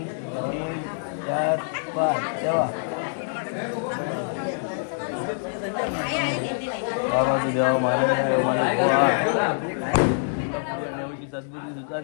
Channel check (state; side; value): silent; right; 62 dB below the other